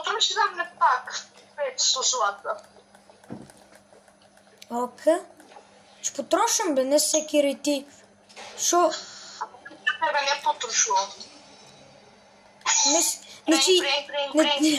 нам не пак. 500 злата. Окей. Ще потрошам, бе, не всеки рети. Шо? Тебе не потрошувам. Значи...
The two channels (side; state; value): both; identical; correlation 1.00